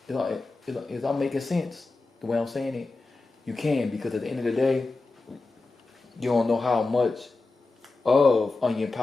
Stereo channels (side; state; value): right; quieter; 3.5 dB